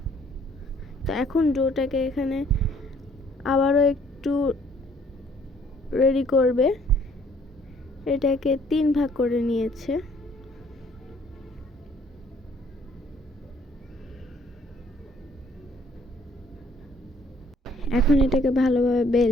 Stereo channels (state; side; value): normal; both; correlation 0.61